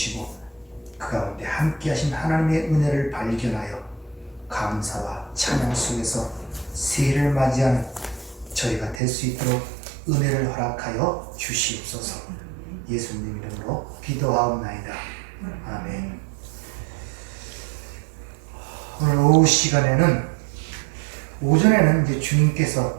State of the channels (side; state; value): left; drops out; at 9.0 s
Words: 그 가운데 함께 하신 하나님의 은혜를 발견하여 감사와 찬양 속에서 새해를 맞이하는 저희가 될 수 있도록 은혜를 허락하여 주시옵소서. 예수님 이름으로 기도하옵나이다. 아멘. 오늘 오후 시간에는, 오전에는 이제